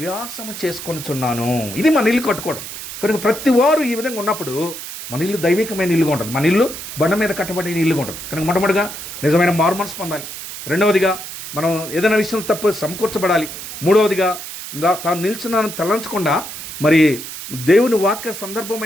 చేసుకొనిచున్నాను. ఇది మన ఇల్లు కట్టుకోవడం. కనుక ప్రతి వారు ఈ విధంగా ఉన్నప్పుడు మన ఇల్లు దైవికమైన ఇల్లుగా ఉంటుంది. మన ఇల్లు బండ మీద కట్టబడిన ఇల్లుగా ఉంటుంది. కనుక మొట్టమొదటిగా నిజమైన మారుమనసు పొందాలి. 2వదిగా మనం ఏదైనా విషయం తప్పు సమకూర్చబడాలి. 3వదిగా తాను నిల్చున్నాను తలంచకుండా మరి దేవుని వాక్య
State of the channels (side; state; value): right; noise; hiss, 10 dB below the sound